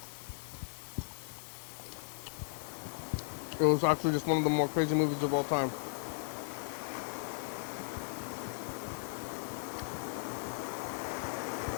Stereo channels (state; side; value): silent; right; digital silence